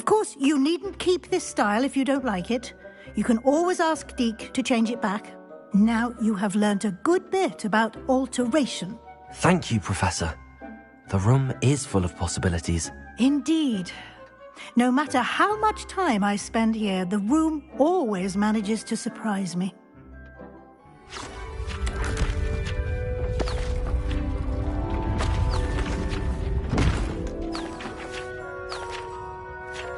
course, you needn't keep this style if you don't like it. You can always ask Deke to change it back. Now you have learnt a good bit about alteration. Thank you, Professor. The room is full of possibilities. Indeed. No matter how much time I spend here, the room always manages to surprise me.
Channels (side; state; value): both; identical; correlation 1.00